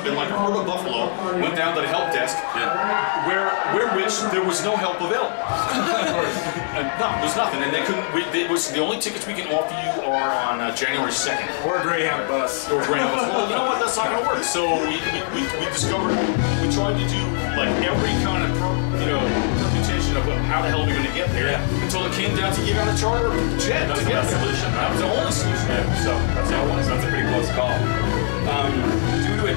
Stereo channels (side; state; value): right; silent; digital silence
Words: and like a herd of buffalo went down to the help desk, where which there was no help available. No, there's nothing, and they couldn't. It was the only tickets we can offer you are on January 2nd. Or a Greyhound bus. Or a Greyhound bus. Well, you know what? That's not going to work. So we discovered, we tried to do like every kind of permutation of how the hell we're going to get there until it came down to you got to charter a jet. That was the best solution. That was the only solution. So that's how it was. That's a pretty close call. Due to a